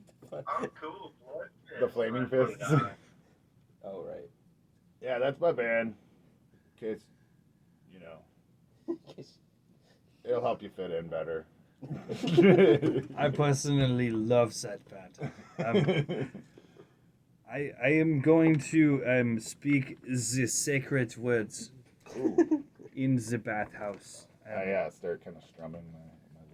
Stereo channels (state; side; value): identical; both; correlation 1.00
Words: the fun. Oh, cool. Blood fist. The flaming I put it fists. on. Oh right. Yeah, that's my band. In case, you know, it'll help you fit in better. I personally love that part. I am going to speak the sacred words in the bathhouse. Yeah, start kind of strumming